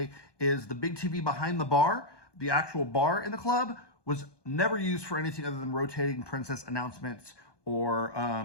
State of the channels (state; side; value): late; right; 1.2 ms